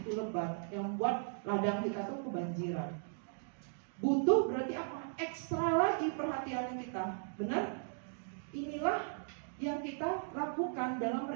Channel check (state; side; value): silent; left; digital silence